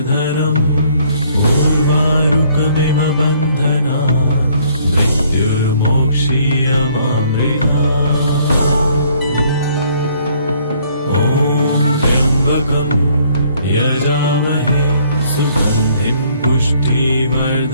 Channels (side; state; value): both; inverted; correlation -0.63